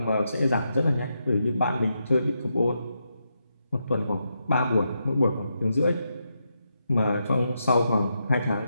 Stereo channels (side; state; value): both; inverted; correlation -0.84